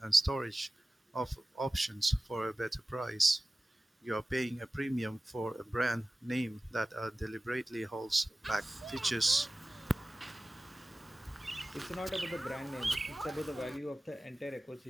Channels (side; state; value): both; normal; correlation 0.97